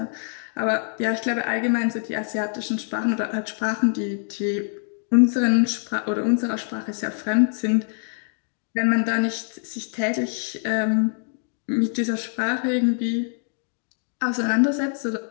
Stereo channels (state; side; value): silent; right; 55 dB below the other